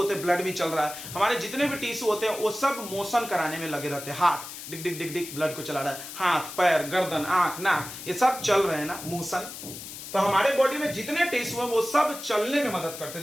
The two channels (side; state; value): left; noise; hiss, 11 dB below the sound